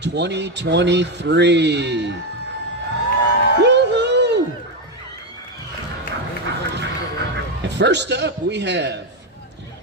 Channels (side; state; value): both; normal; correlation 0.09